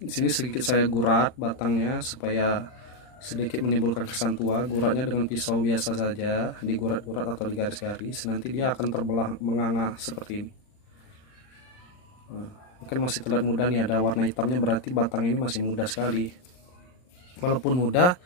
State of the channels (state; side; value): late; right; 39 ms